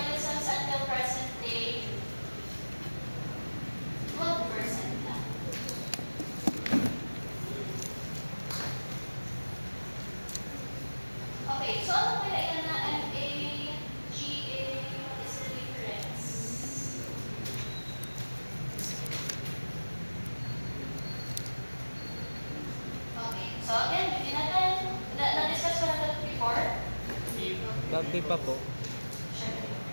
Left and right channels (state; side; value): inverted; both; correlation -1.00